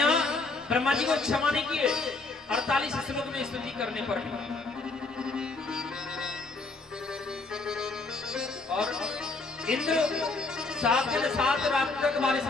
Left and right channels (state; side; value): quieter; right; 3.6 dB